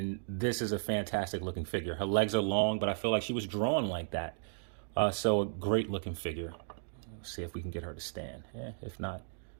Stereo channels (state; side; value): silent; left; digital silence